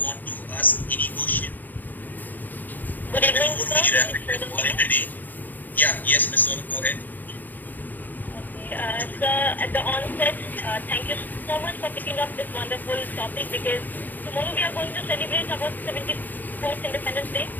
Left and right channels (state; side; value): late; right; 0.086 ms